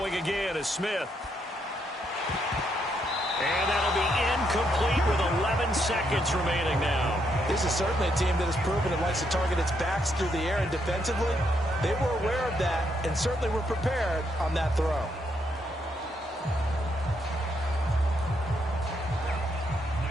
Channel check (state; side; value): normal; both; correlation 0.76